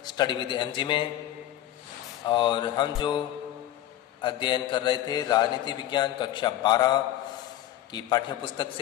study with MG में। और हम जो अध्ययन कर रहे थे राजनीति विज्ञान कक्षा 12 की पाठ्य पुस्तक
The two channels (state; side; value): quieter; right; 13.1 dB